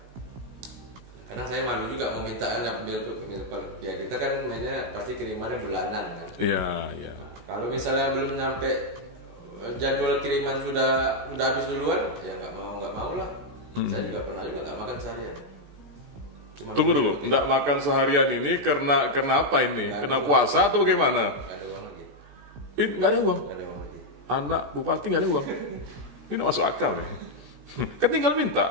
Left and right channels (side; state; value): left; late; 16 ms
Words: kadang saya malu juga meminta anak ya kita kan mainnya pasti kirimannya bulanan kan. Iya. Kalau misalnya belum nyampe jadwal kiriman sudah habis duluan, ya nggak mau lah. Saya juga pernah nggak makan seharian. Tunggu dulu, nggak makan seharian ini karena apa ini? Kena puasa atau bagaimana? Nggak ada uang lagi. Nggak ada uang. Nggak ada uang lagi. Anak bupati nggak ada uang. Ini nggak masuk akal nih. Kan tinggal minta,